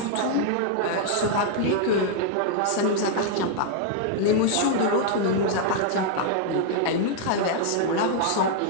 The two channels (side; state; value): both; different; correlation 0.00